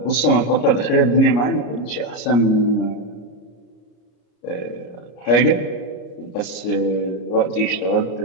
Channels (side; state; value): right; late; 33 ms